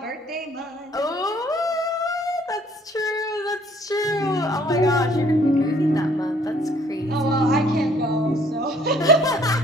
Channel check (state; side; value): normal; both; correlation 0.60